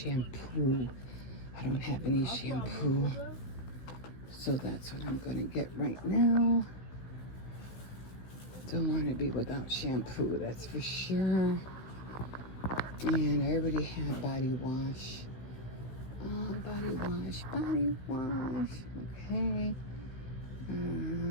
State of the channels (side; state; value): right; late; 16 ms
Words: I don't have any shampoo, so that's what I'm gonna get right now. Don't want to be without shampoo, that's for sure. And I already have body wash. Body wash. Okay.